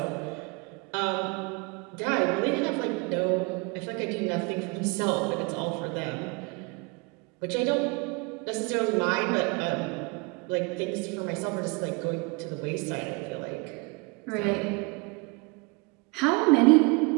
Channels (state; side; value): quieter; left; 29.1 dB